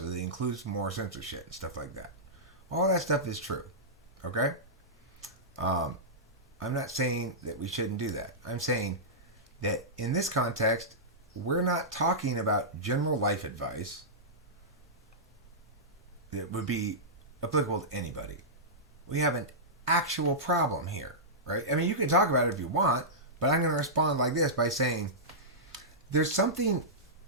that it includes more censorship and stuff like that. All that stuff is true. Okay? I'm not saying that we shouldn't do that. I'm saying that in this context, we're not talking about general life advice that would be applicable to anybody. We have an actual problem here, right? You can talk about it if you want, but I'm going to respond like this by saying there's something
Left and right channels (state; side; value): normal; both; correlation -0.15